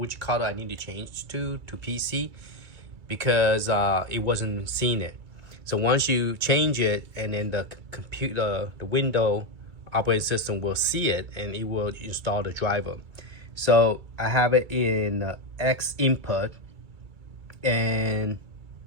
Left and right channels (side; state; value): left; late; 2.3 ms